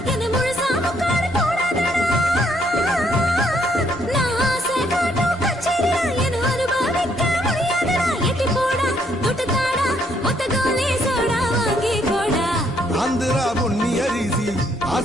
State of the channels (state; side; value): normal; both; correlation 0.70